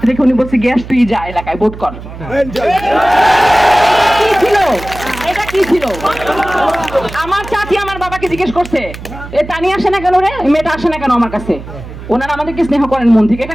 রেখে উনি বলছে গ্যাস তুই যা এলাকায় ভোট কর। কি ছিল এটা? কি ছিল? আমার চাচি আমার বাবাকে জিজ্ঞেস করছে এ তানি আসে না কেন রে, মেয়েটা আসে না কেন আমার কাছে? ওনারা আমাদেরকে স্নেহ করেন মন থেকে,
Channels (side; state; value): right; noise; hum, 13 dB below the sound